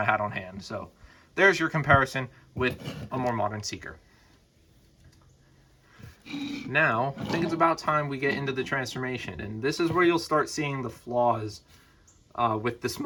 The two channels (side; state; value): both; identical; correlation 1.00